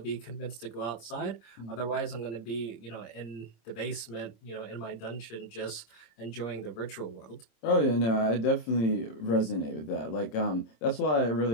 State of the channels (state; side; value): late; right; 26 ms